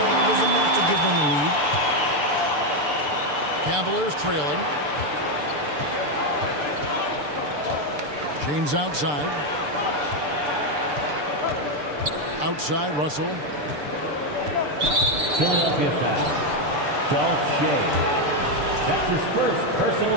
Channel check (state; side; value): late; left; 6.8 ms